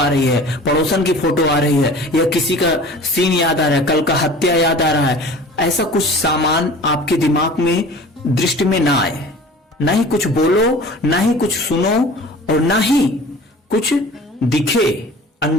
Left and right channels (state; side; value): normal; both; correlation 0.43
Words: रही है, पड़ोसन की फोटो आ रही है, या किसी का सीन याद आ रहा है, कल का हत्या याद आ रहा है। ऐसा कुछ सामान आपके दिमाग में दृष्टि में ना आए। ना ही कुछ बोलो, ना ही कुछ सुनो, और ना ही कुछ दिखे